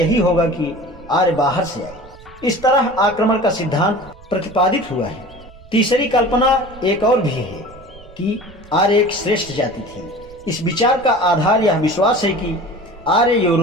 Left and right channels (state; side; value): noise; right; rumble, 21 dB below the sound